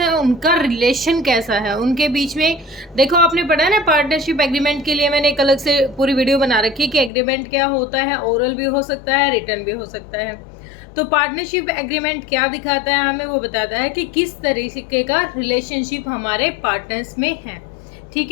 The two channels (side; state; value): right; drops out; at 7.1 s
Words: उनका रिलेशन कैसा है उनके बीच में। देखो आपने पढ़ा है ना, पार्टनरशिप एग्रीमेंट के लिए मैंने एक अलग से पूरी वीडियो बना रखी है कि एग्रीमेंट क्या होता है, ओरल भी हो सकता है, रिटर्न भी हो सकता है। तो पार्टनरशिप एग्रीमेंट क्या दिखाता है हमें, वो बताता है कि किस तरीके का रिलेशनशिप हमारे पार्टनर्स में है। ठीक